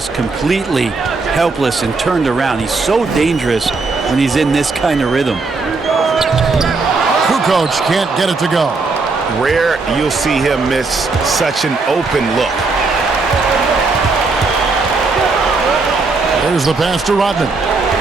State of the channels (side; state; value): left; quieter; 3.9 dB